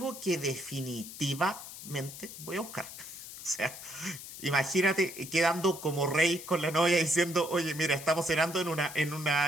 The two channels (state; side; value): noise; left; hiss, 12 dB below the sound